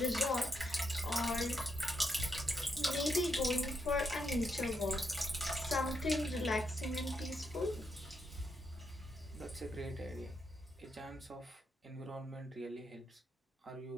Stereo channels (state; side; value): normal; both; correlation 0.79